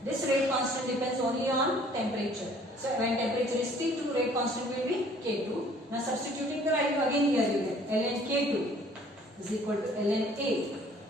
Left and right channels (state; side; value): normal; both; correlation 0.56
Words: This rate constant depends only on temperature. So when temperature is T2, rate constant will be K2. Now substituting the value again here you get ln K2 is equal to ln A